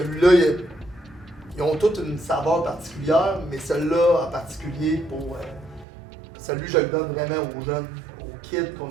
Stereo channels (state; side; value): drops out; left; at 5.9 s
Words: ils ont toutes une saveur particulière, mais celui-là en particulier, celui je le donne vraiment aux jeunes, aux kids